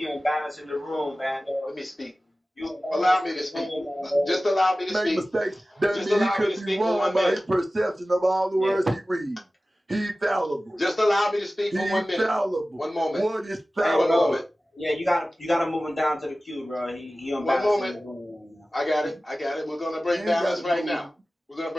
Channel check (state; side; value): normal; both; correlation 0.96